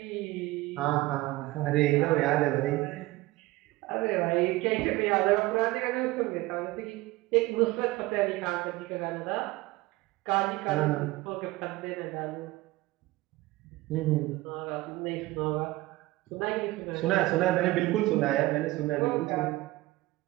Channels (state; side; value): quieter; left; 19.3 dB